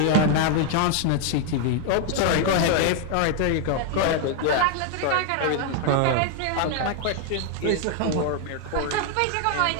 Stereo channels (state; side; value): different; both; correlation 0.01